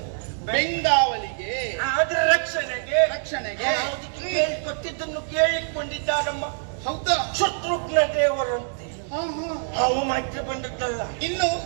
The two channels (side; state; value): left; silent; digital silence